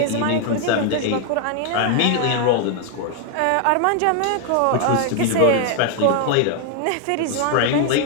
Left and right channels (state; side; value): different; both; correlation 0.00